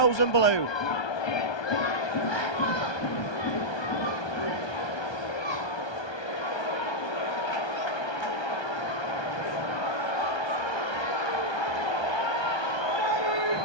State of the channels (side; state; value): right; late; 1.2 ms